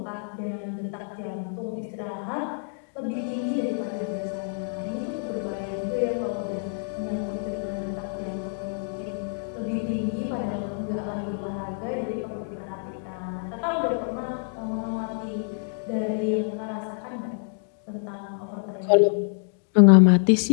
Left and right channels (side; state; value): right; silent; digital silence